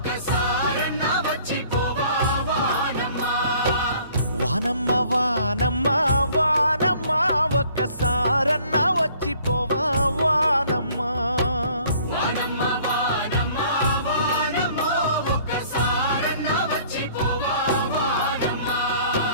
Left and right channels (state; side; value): inverted; both; correlation -0.56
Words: వచ్చిపోవా వానమ్మ వానమ్మ వానమ్మ వానమ్మ ఒక్కసారన్నా వచ్చిపోవా వానమ్మ వానమ్మ వానమ్మ వానమ్మ ఒక్కసారన్నా వచ్చిపోవా వానమ్మ